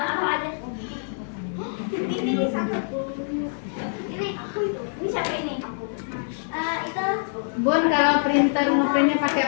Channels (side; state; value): right; silent; digital silence